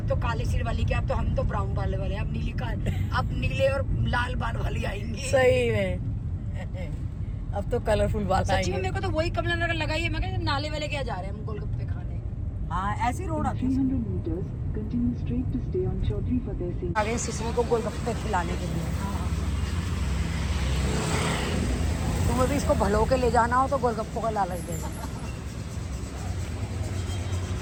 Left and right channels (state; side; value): identical; both; correlation 1.00